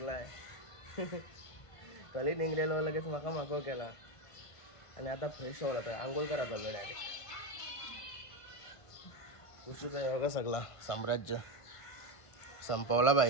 कली निघलेलो लगेच माका माको केला आणि आता फ्रेश होला तर आंघोळ करा चाललो डायरेक्ट। खुशीचा योगा सगळा साम्राज्य संपवला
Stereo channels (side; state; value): right; late; 1.5 ms